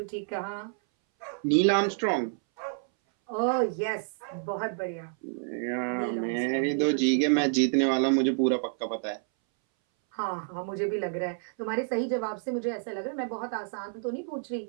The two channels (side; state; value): left; silent; 59 dB below the other